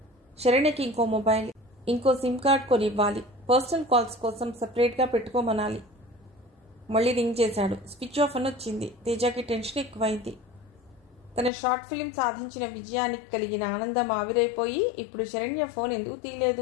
శరణ్యకి ఇంకో మొబైల్, ఇంకో సిమ్ కార్డ్ కొని ఇవ్వాలి. పర్సనల్ కాల్స్ కోసం సపరేట్గా పెట్టుకోమనాలి. మళ్ళీ రింగ్ చేశాడు. స్విచ్ ఆఫ్ అని వచ్చింది. తేజకి టెన్షన్ ఎక్కువైంది. తన షార్ట్ ఫిల్మ్ సాధించిన విజయానికి కలిగిన ఆనందం ఆవిరైపోయి ఇప్పుడు శరణ్య ఫోన్ ఎందుకు తీయలేదు,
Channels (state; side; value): drops out; right; at 11.5 s